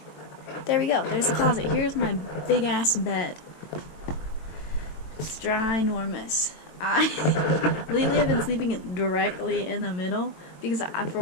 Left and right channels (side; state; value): right; late; 22 ms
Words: there we go. There's the closet. Here's my big ass bed. It's ginormous. Lately I've been sleeping directly in the middle because for